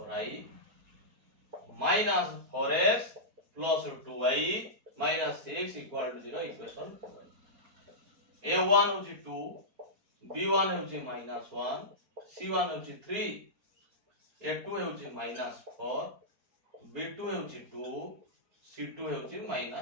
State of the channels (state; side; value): late; left; 4.3 ms